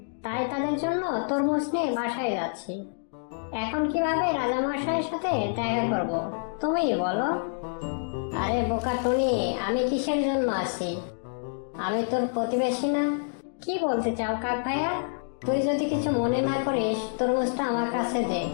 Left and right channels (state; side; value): silent; right; digital silence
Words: তাই তাদের জন্য তরমুজ নিয়ে বাসায় যাচ্ছি। এখন কিভাবে রাজামশাইয়ের সাথে দেখা করব তুমিই বলো। আরে বোকা টনি, আমি কিসের জন্য আছি? আমি তোর প্রতিবেশী না? কি বলতে চাও কাক ভাইয়া? তুই যদি কিছু মনে না করিস তরমুজটা আমার কাছে দে,